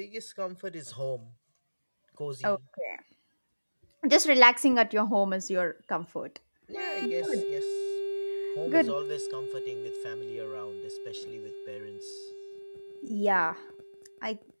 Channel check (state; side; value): inverted; both; correlation -1.00